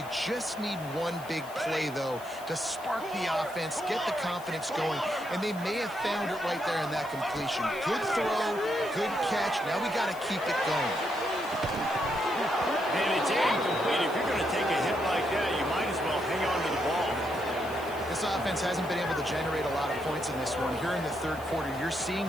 just need one big play, though, to spark the offense, get the confidence going, and they may have found it right there in that completion. Good throw, good catch. Now we got to keep it going. And it's incomplete. If you're going to take a hit like that, you might as well hang on to the ball. This offense hasn't been able to generate a lot of points in this one. Here in the third quarter, you're seeing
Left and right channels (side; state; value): left; noise; hiss, 20 dB below the sound